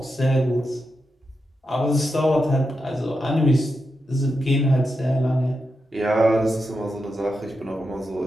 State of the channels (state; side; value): normal; both; correlation 0.87